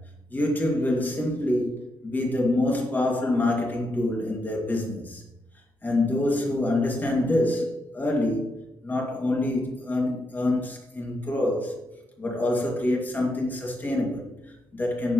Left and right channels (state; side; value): normal; both; correlation 0.82